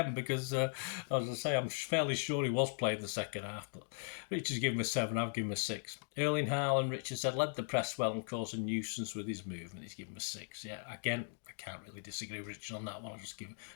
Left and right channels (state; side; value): silent; right; digital silence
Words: because, as I say, I'm fairly sure he was playing the second half. But Richard's given him a 7. I've given him a 6. Erling Haaland, Richard said, led the press well and caused a nuisance with his movement. He's given him a 6. Yeah, again, I can't really disagree with Richard on that one. I'll just give